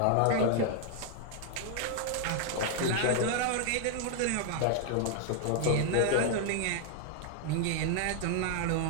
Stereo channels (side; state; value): both; different; correlation 0.00